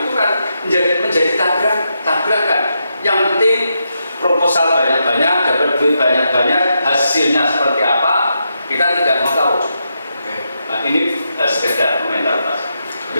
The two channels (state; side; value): inverted; both; correlation -0.83